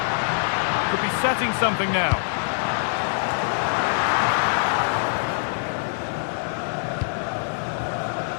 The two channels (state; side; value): silent; right; digital silence